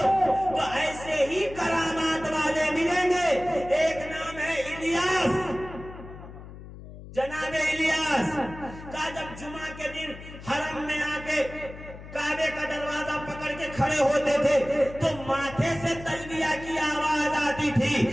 تو ایسے ہی کرامات والے ملیں گے. ایک نام ہے الیاس، جناب الیاس. کا جب جمعہ کے دن حرم میں آ کے کعبے کا دروازہ پکڑ کے کھڑے ہوتے تھے تو ماتھے سے تلبیہ کی آواز آتی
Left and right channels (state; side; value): noise; left; hum, 15 dB below the sound